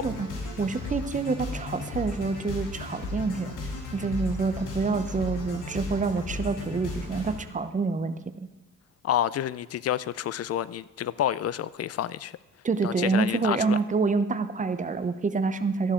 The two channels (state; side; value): normal; both; correlation 0.49